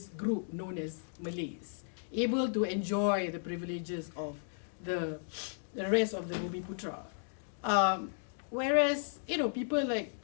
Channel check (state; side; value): silent; right; digital silence